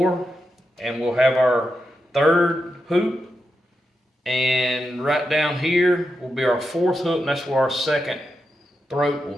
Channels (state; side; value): normal; both; correlation 0.87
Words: and we'll have our third hoop. And right down here will be our 4th hook, and that's where our second throat will